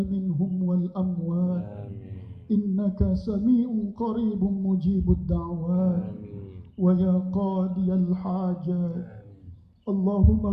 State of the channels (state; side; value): identical; both; correlation 1.00